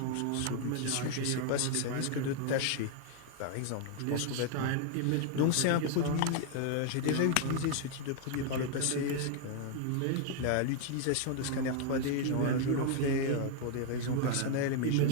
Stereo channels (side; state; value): both; different; correlation 0.00